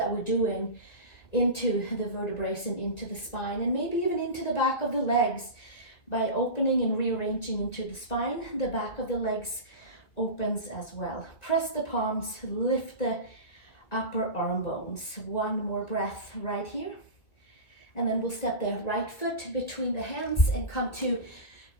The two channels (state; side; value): late; right; 2.1 ms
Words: we're doing into the vertebrae and into the spine, and maybe even into the back of the legs. By opening and rearranging into the spine, the back of the legs opens as well. Press the palms, lift the upper arm bones. One more breath right here. And then we'll step the right foot between the hands and come to